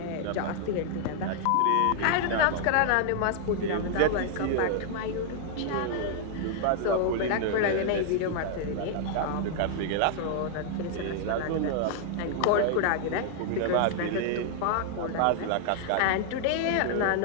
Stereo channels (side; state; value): both; different; correlation 0.00